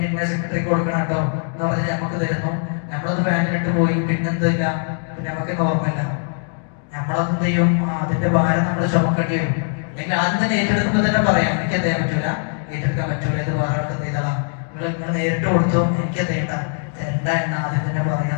ഇന്ന സെക്രട്ടറി കൊടുക്കണം കേട്ടോ എന്ന് പറഞ്ഞാൽ നമുക്ക് തരുന്നു. നമ്മളത് ബാങ്കിലിട്ട് പോയി, പിന്നെന്തില്ല, പിന്നെ നമുക്ക് ഓർമ്മയില്ല. നമ്മളത് ചെയ്യും, അതിന്റെ ഭാരം നമ്മൾ ചുമക്കേണ്ടി വരും. അല്ലെങ്കിൽ ആദ്യം തന്നെ ഏറ്റെടുക്കുമ്പോൾ തന്നെ പറയാം, എനിക്ക് എന്ത് ചെയ്യാൻ പറ്റൂല, ഏറ്റെടുക്കാൻ പറ്റൂല, ഇത് വേറെ ആൾക്ക് ചെയ്തോളാം, നിങ്ങൾ നേരിട്ട് കൊടുത്തോ, എനിക്ക് തരണ്ട എന്ന് ആദ്യം തന്നെ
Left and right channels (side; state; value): right; silent; 56 dB below the other